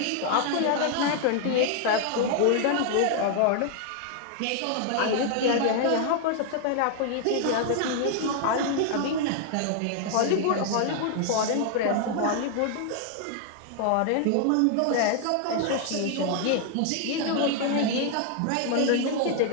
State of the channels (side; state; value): both; different; correlation 0.00